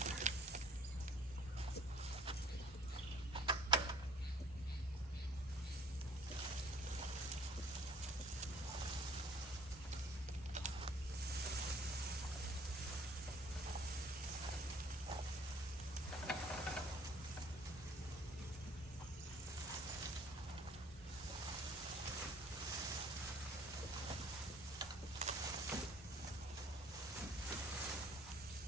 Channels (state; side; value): normal; both; correlation 0.55